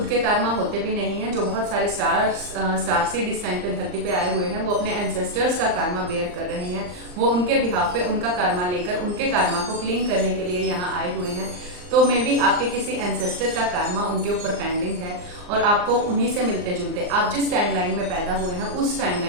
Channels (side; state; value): left; late; 39 ms